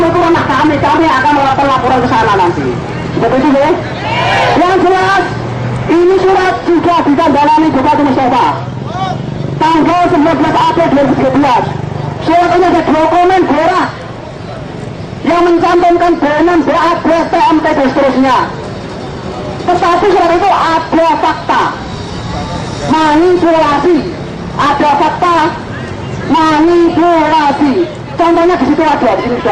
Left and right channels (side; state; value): both; identical; correlation 1.00